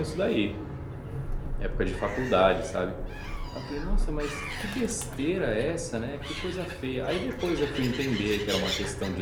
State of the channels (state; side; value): identical; both; correlation 1.00